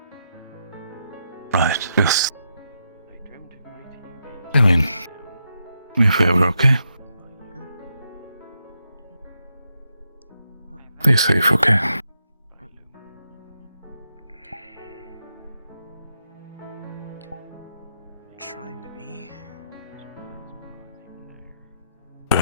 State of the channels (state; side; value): inverted; both; correlation -0.82